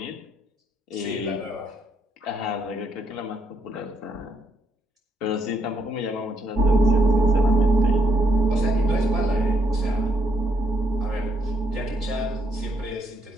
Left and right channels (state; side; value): normal; both; correlation 0.74